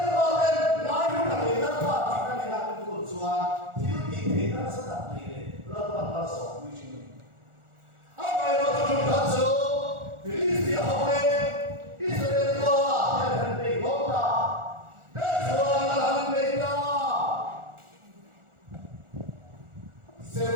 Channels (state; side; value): late; left; 1.4 ms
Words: có lên nói với cả người ta và chỉ là người ta cũng có chùa thiếu gì thì nó sẽ đặt đi để nó là số quy trình ông này nó chúng ta số thì lý do hôm nay Israel có cái hình bị gốc ta để chùa là hình bị ta xem